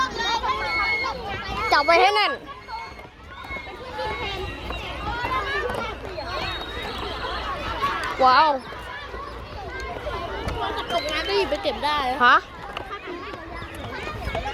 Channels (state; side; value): identical; both; correlation 1.00